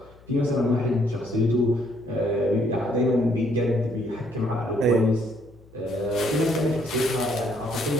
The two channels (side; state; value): left; noise; hum, 25 dB below the sound